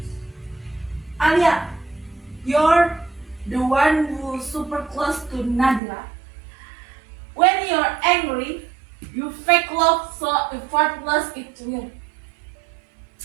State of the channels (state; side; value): drops out; left; at 5.8 s